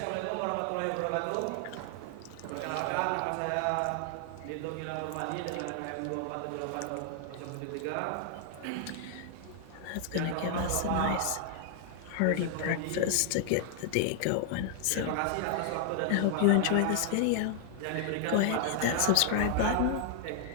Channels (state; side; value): different; both; correlation 0.00